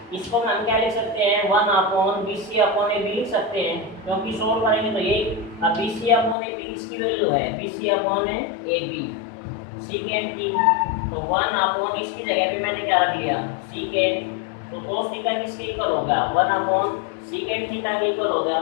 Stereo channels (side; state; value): right; drops out; at 6.4 s